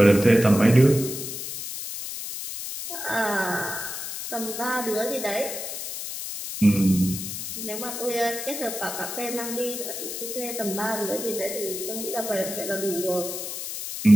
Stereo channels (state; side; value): noise; left; hiss, 7 dB below the sound